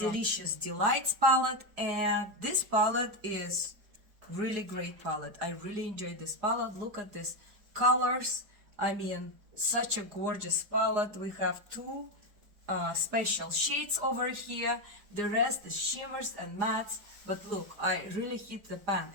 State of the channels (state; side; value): late; left; 4.8 ms